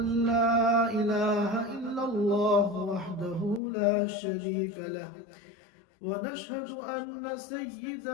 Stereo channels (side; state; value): right; drops out; at 3.6 s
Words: لا إله إلا الله وحده لا شريك له ونشهد أن